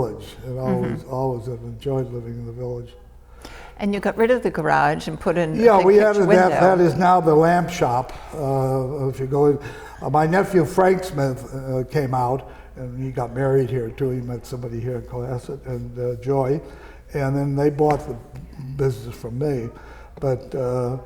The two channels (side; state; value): both; identical; correlation 1.00